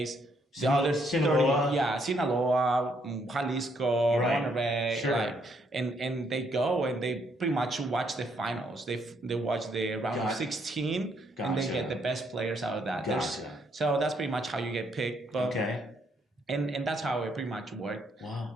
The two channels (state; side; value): normal; both; correlation 0.72